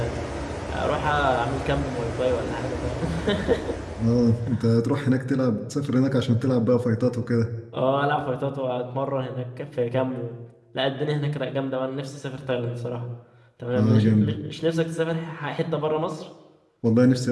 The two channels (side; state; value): both; identical; correlation 1.00